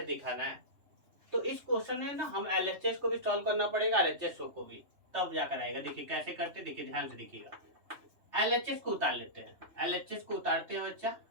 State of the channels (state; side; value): late; left; 3.2 ms